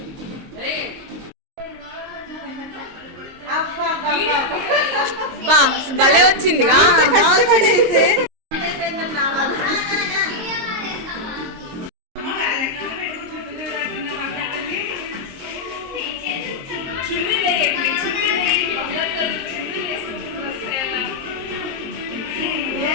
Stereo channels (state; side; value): late; left; 22 ms